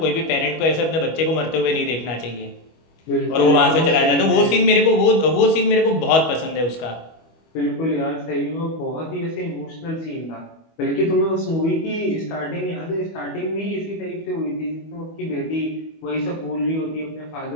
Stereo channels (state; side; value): late; right; 25 ms